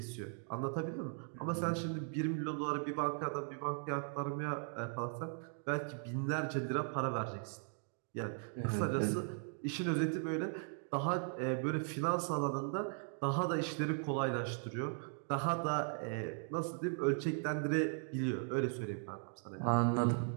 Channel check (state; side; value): silent; left; 52 dB below the other